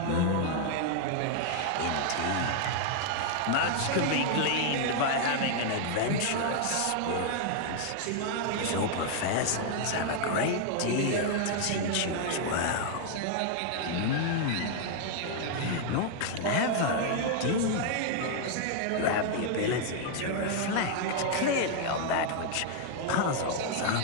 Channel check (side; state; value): both; different; correlation 0.00